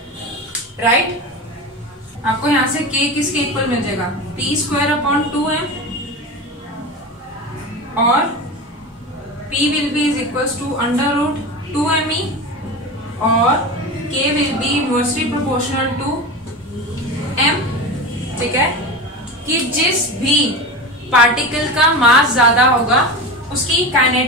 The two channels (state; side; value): normal; both; correlation 0.26